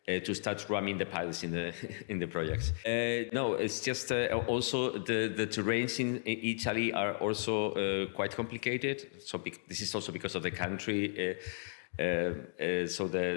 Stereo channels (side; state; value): right; silent; digital silence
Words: to start running the pilots in the projects. No, it's just also the terrains in Italy are also quite complicated. So this is also because of the country. So